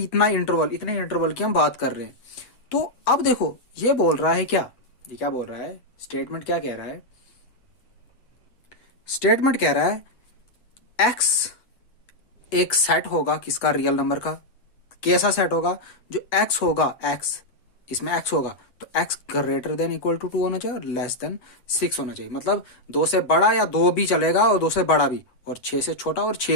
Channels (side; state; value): right; late; 8.1 ms